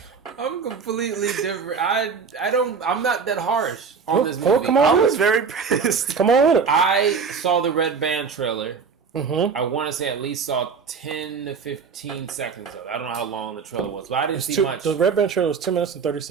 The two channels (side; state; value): left; quieter; 5.7 dB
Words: I'm completely different. I'm not that harsh on this movie. Come on, I was very pissed. Come on with it. I saw the Red Band trailer. Mm-hmm. I want to say at least saw 10 to 15 seconds of it. I don't know how long the trailer was, but I didn't see much. The Red Band trailer was 2 minutes and 30